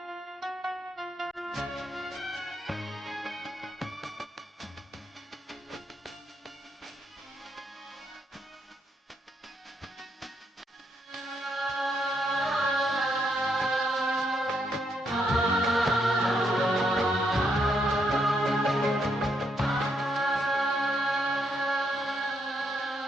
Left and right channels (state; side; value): normal; both; correlation 0.77